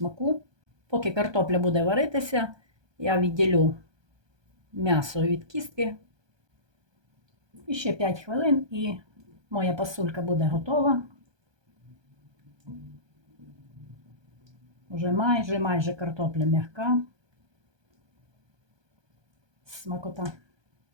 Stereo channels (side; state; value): left; late; 1.2 ms